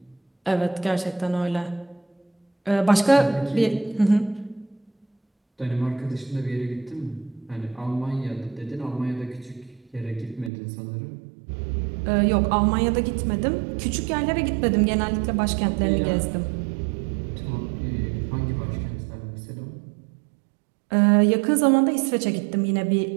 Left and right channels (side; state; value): left; drops out; at 10.5 s